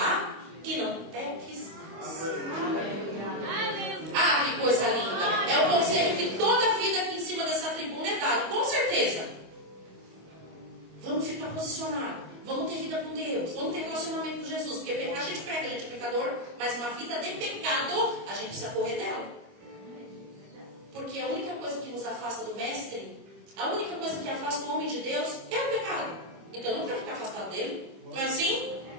e não peques mais. Ah, que coisa linda. É o conselho que toda a vida aqui em cima dessa tribuna é dado, com certeza. Vamos ficar posicionados. Vamos ter vida com Deus. Vamos ter relacionamento com Jesus. Porque pecar a gente pega, a gente é pecador. Mas uma vida de pecado, a gente precisa correr dela. Porque a única coisa que nos afasta do Mestre, a única coisa que afasta o homem de Deus é o pecado. Então eu não quero ficar afastado dele. Não é assim?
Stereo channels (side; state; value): left; late; 25 ms